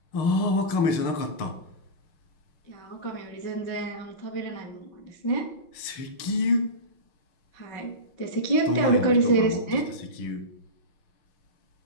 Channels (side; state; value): right; late; 6.5 ms